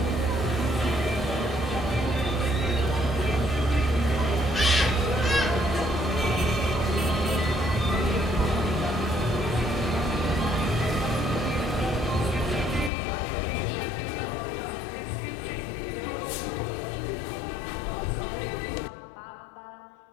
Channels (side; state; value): right; drops out; at 12.9 s